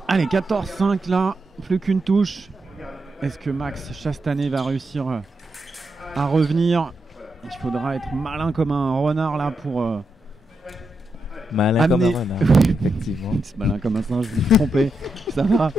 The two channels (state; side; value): normal; both; correlation 0.85